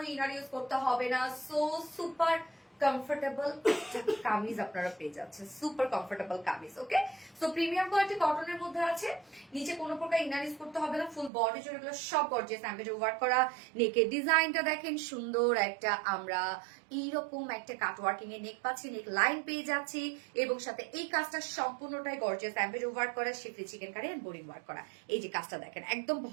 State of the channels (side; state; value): left; drops out; at 11.3 s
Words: ইনার ইউজ করতে হবে না। সো সুপার কমফোর্টেবল কামিজ আপনারা পেয়ে যাচ্ছেন, সুপার কমফোর্টেবল কামিজ। ওকে, সো প্রিমিয়াম কোয়ালিটি কটনের মধ্যে আছে, নিচে কোনো প্রকার ইনার ইউজ করতে হবে না। ফুল বডি জুড়ে এগুলো সব গর্জিয়াস এমব্রয়ডারি ওয়ার্ক করা। নেকের ডিজাইনটা দেখেন, সুন্দর একটা আমরা এইরকম একটা কাট ওয়ার্কিং এর নেক পাচ্ছি, নেক লাইন পেয়ে যাচ্ছি এবং সাথে এই কাজটা সম্পূর্ণটাই গর্জিয়াস এমব্রয়ডারি ওয়ার্ক করা, schiffli chikankari and boring work করা। এই যে কাজটা দেখেন, একদম